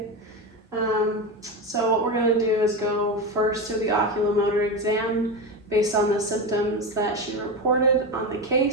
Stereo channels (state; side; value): normal; both; correlation 0.18